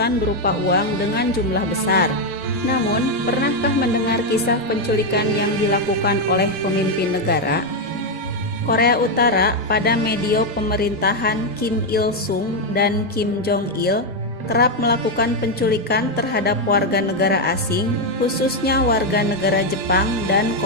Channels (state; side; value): normal; both; correlation 0.03